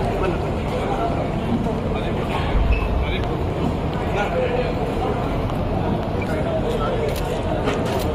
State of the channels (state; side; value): identical; both; correlation 1.00